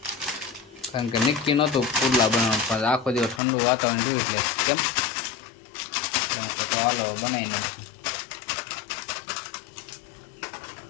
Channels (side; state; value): right; drops out; at 3.4 s